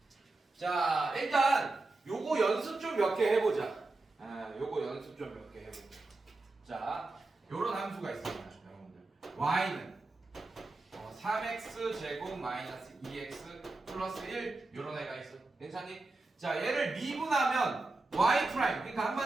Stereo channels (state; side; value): quieter; left; 3.2 dB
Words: 자, 일단 요거 연습 좀 몇 개 해보자. 요거 연습 좀 몇 개 해보자. 자, 요런 함수가 있습니다, 여러분들. y는 3x 제곱 마이너스 2x 플러스 1 요런 애가 있어. 괜찮니? 자, 얘를 미분하면 y 프라임. 그러니까